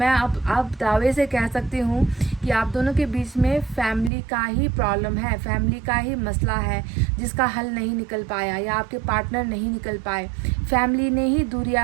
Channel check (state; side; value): drops out; left; at 4.1 s